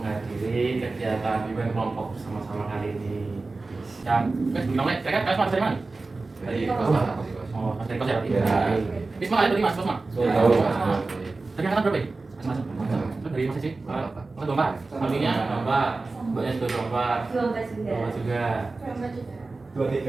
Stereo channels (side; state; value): left; quieter; 3.6 dB